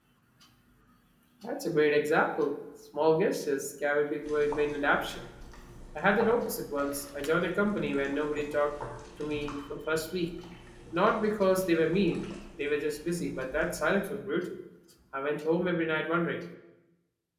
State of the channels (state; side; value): identical; both; correlation 1.00